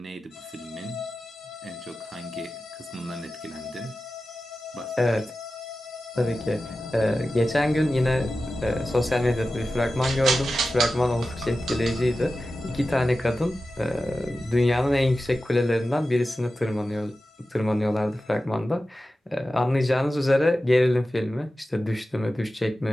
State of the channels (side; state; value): both; normal; correlation 0.94